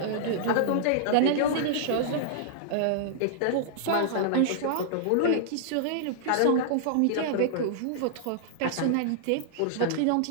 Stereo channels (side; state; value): both; different; correlation -0.01